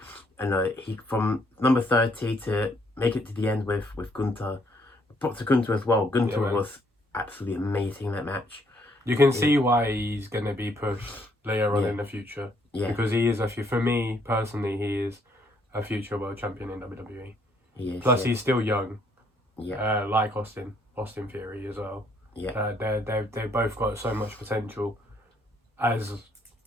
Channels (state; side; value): normal; both; correlation 0.68